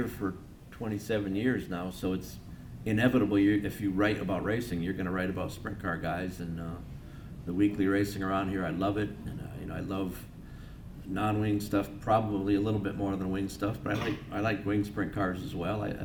for 27 years now, so it's inevitable. If you write about racing, you're going to write about sprint car guys. And the weekly racing around here, I love it, and you know, I love non-wing stuff probably a little bit more than wing stuff, but I like wing sprint cars as well.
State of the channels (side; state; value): both; identical; correlation 1.00